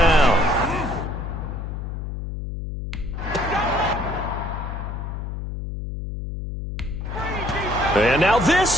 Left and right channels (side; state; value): left; noise; hum, 6 dB below the sound